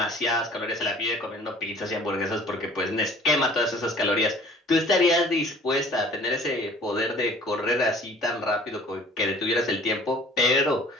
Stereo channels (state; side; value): normal; both; correlation 0.50